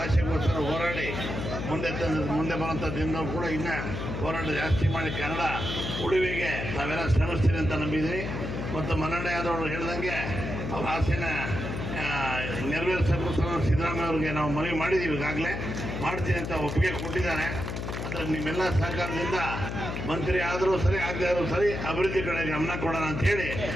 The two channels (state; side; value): noise; left; hum, 5 dB below the sound